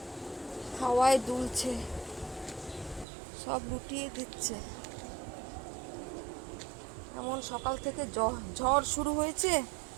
হাওয়ায় দুলছে, সব লুটিয়ে দিচ্ছে। এমন সকাল থেকে ঝড় শুরু হয়েছে,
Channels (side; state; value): left; drops out; at 3.1 s